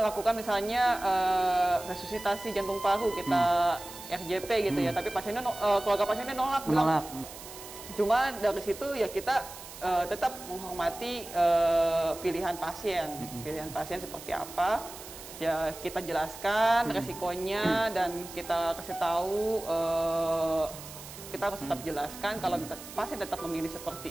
misalnya resusitasi jantung paru, kita RJP gitu ya, tapi pasiennya keluarga pasiennya nolak, bilang. Cuma dari situ ya kita tetap menghormati pilihan pasien seperti apa. Ya kita jelaskan resikonya dan kita kasih tahu, kita harus tetap jelaskan kalau pasien tetap memilih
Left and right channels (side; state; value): right; noise; hiss, 14 dB below the sound